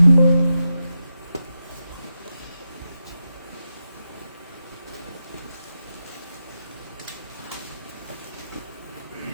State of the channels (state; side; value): inverted; both; correlation -0.89